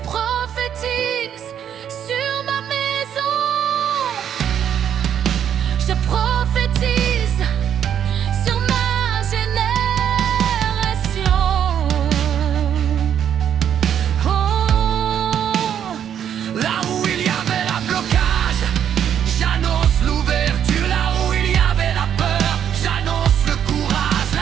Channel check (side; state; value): left; quieter; 9.2 dB